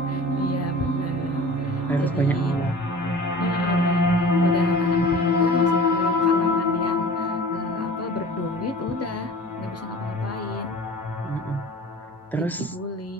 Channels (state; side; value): normal; both; correlation 0.41